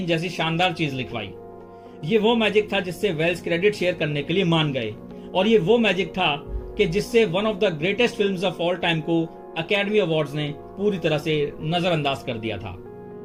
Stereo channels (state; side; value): identical; both; correlation 1.00